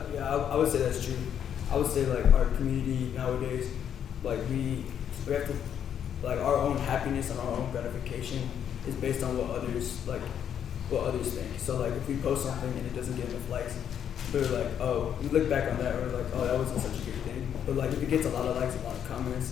Yeah, I would say that's true. I would say like our community nowadays, like we have to, like our own happiness and our own gratification is based on what others think. So like if we post something and it doesn't get enough likes, we're like, oh, we look back on that, we're like, oh, that wasn't such a good thing. But like if it gets a lot of likes and a lot of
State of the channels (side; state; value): right; quieter; 9.0 dB